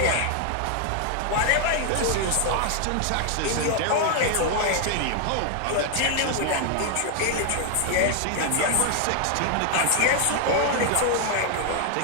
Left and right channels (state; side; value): different; both; correlation 0.00